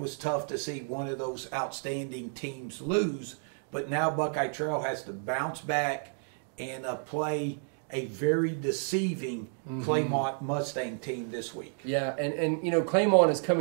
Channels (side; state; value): left; silent; 56 dB below the other